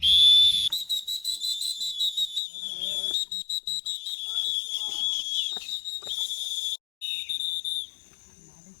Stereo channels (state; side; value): drops out; right; at 2.4 s